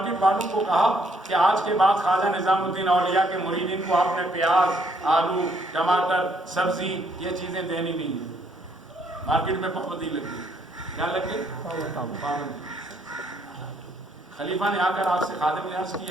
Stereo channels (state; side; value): normal; both; correlation 0.69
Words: والوں کو کہا کہ آج کے بعد خواجہ نظام الدین اولیاء کے مریدین کو آپ نے پیاز، آلو، ٹماٹر، سبزی یہ چیزیں دینی نہیں ہیں. مارکیٹ میں پابندی لگ گئی. کیا لگ گئی؟ پابندی. خلیفہ نے آ کر آپ سے خادم نے عرض